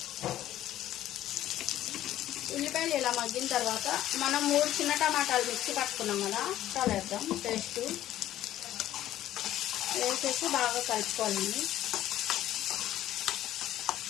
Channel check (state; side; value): quieter; right; 13.2 dB